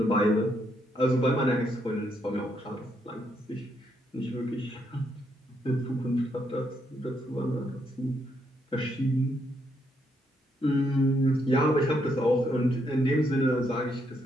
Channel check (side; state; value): both; normal; correlation 0.76